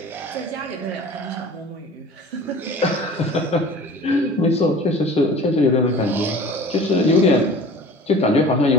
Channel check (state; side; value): normal; both; correlation 0.42